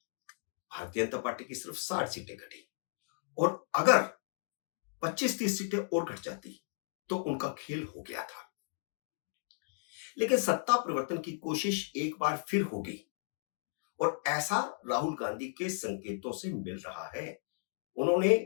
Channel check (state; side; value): silent; right; digital silence